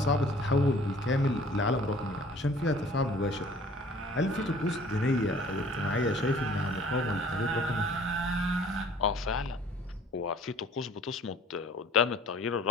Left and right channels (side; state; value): both; normal; correlation 0.52